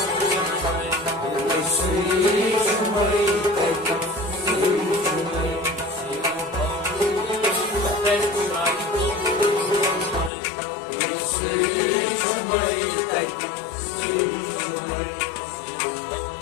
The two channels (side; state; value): right; drops out; at 10.3 s